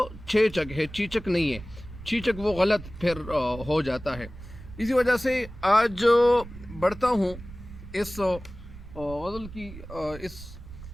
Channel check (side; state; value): right; noise; rumble, 14 dB below the sound